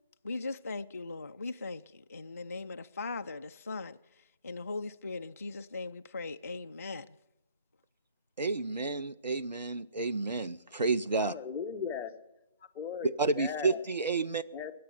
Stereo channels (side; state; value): both; inverted; correlation -0.54